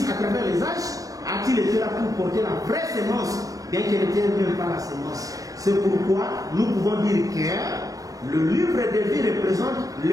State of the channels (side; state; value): left; late; 0.17 ms